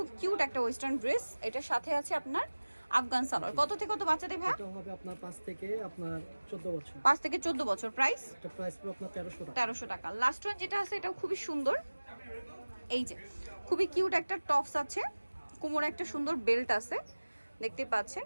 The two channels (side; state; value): both; inverted; correlation -1.00